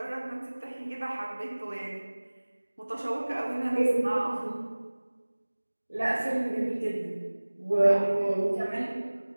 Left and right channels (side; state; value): both; inverted; correlation -1.00